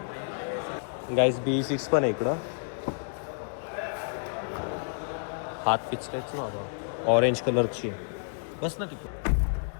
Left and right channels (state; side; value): silent; right; digital silence